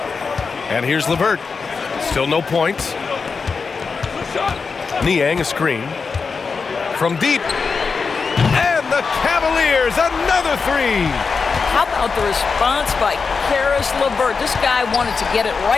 And here's LeVert. Still no points. Niang a screen. From deep. And the Cavaliers, another three. How about the response by Caris LeVert? This guy wanted to get it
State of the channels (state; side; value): quieter; right; 5.0 dB